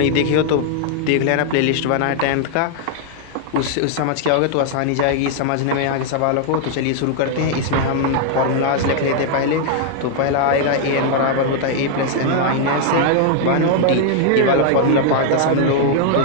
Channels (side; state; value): both; different; correlation 0.00